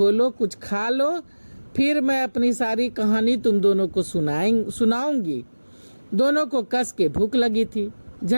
लो, कुछ खा लो, फिर मैं अपनी सारी कहानी तुम दोनों को सुनाऊंगी। दोनों को कस के भूख लगी थी।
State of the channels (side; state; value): both; inverted; correlation -1.00